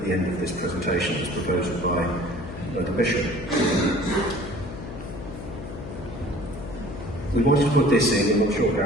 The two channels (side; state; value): left; noise; hum, 10 dB below the sound